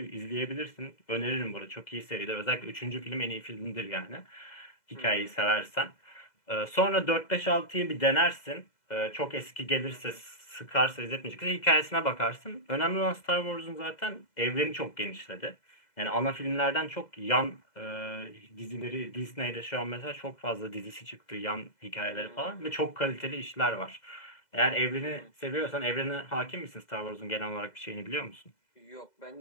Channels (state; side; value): late; right; 2.0 ms